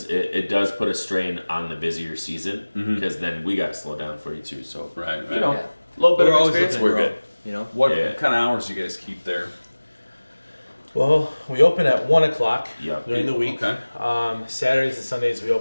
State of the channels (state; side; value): inverted; both; correlation -1.00